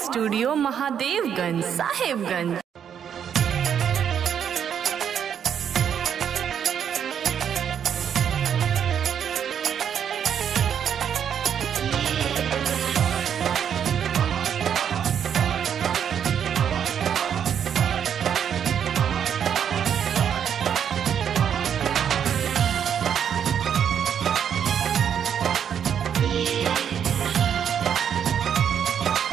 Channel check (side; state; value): left; quieter; 8.4 dB